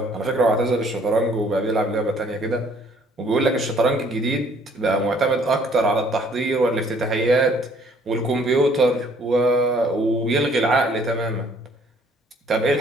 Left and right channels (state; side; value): normal; both; correlation 0.60